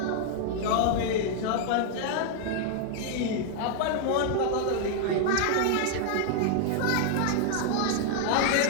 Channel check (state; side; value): different; both; correlation 0.00